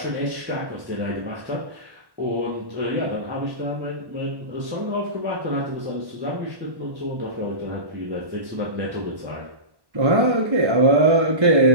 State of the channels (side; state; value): left; late; 1.1 ms